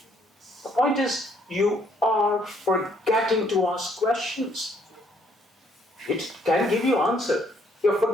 The point is, you are forgetting to ask questions. It can give you answer. You're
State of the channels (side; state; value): both; normal; correlation 0.67